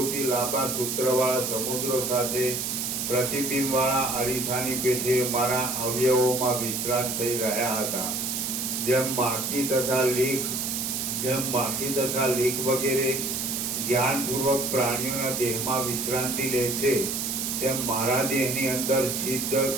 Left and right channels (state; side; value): noise; right; hiss, 2 dB below the sound